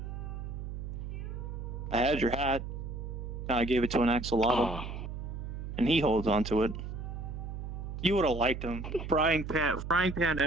I had your hat. I gave it to an axolotl. And he holds on to it. You would have liked him. Frying pan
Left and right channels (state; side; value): noise; right; hum, 7 dB below the sound